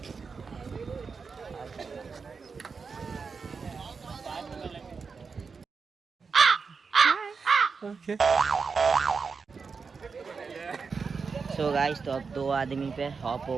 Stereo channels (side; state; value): left; quieter; 5.1 dB